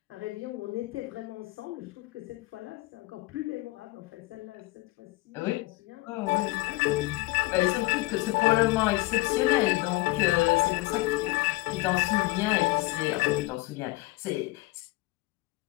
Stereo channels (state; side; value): quieter; right; 20.7 dB